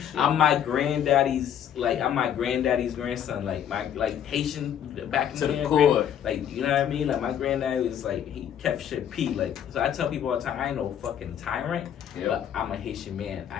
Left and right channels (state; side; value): quieter; right; 9.5 dB